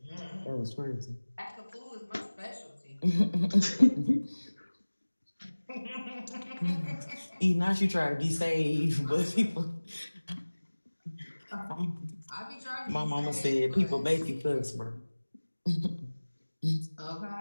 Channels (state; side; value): inverted; both; correlation -1.00